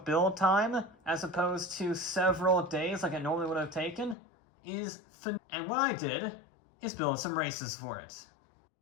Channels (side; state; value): right; drops out; at 4.2 s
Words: build time, as opposed to several days like it normally would have taken, is phenomenal. And what I did is build some races for it.